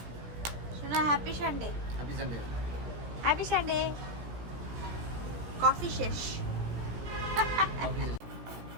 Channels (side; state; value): left; late; 17 ms